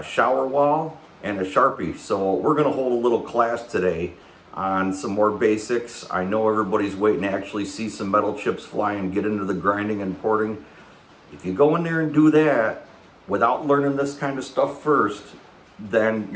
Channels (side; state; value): both; identical; correlation 1.00